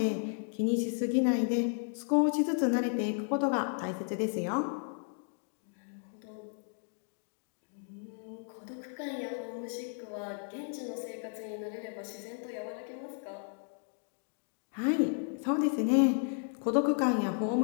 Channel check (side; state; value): right; silent; 55 dB below the other